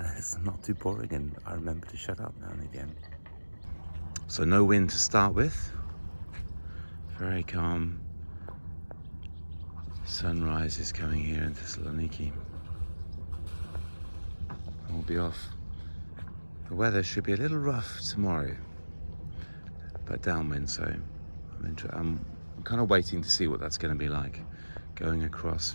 it's not too boring, and I remember to shut up now and again. So no wind to start with, very calm. Sunrise is coming here in Thessaloniki. We'll be off. The weather should be a little rough tomorrow, but downwind, so I'm kind of waiting to see what that's going to be like, going across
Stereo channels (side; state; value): both; inverted; correlation -1.00